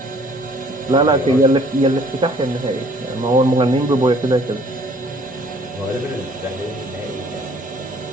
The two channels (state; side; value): normal; both; correlation 0.57